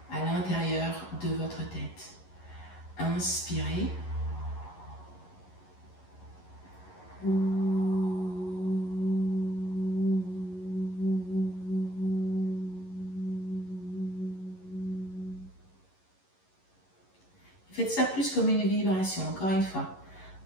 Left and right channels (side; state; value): right; late; 11 ms